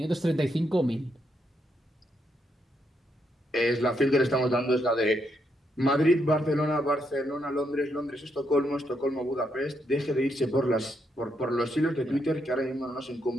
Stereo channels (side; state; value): both; normal; correlation 0.78